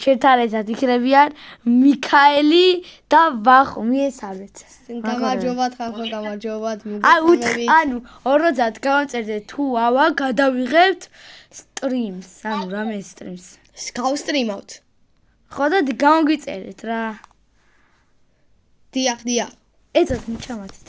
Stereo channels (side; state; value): both; identical; correlation 1.00